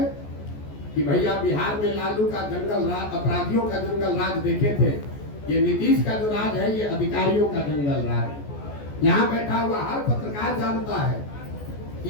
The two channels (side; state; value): right; late; 14 ms